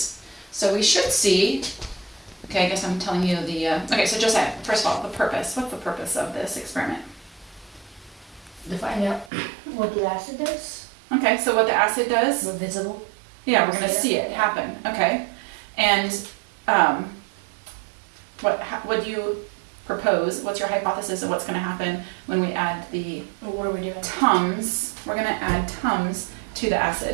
So we should see, okay, I guess I'm telling you okay, so Josiah, first of all, the purpose. What's the purpose of this experiment? To find out what the acid does. Okay, so what the acid does? We're visible. Yeah, we're going to see it happen. Okay, and what do you propose? What's your hypothesis of what's going to happen when we add the What are we doing? Tums? We're going to add Tums to the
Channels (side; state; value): left; drops out; at 9.3 s